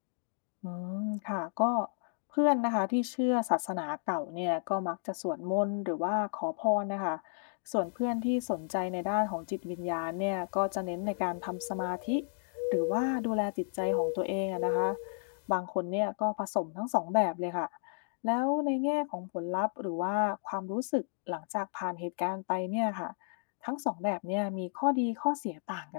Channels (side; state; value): right; silent; digital silence